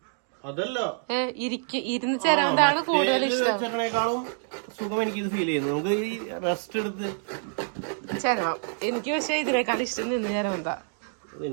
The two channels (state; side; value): silent; left; digital silence